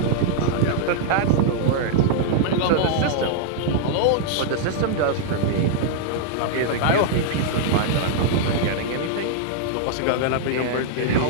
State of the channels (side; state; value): both; different; correlation -0.01